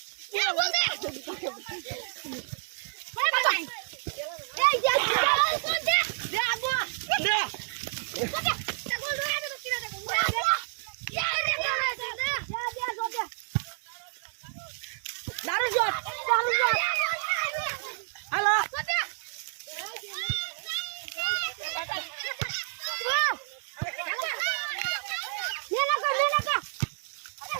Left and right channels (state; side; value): silent; left; digital silence